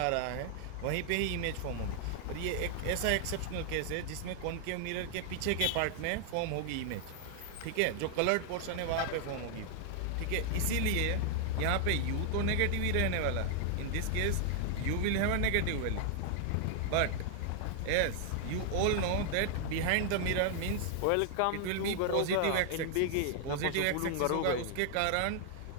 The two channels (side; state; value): both; different; correlation 0.00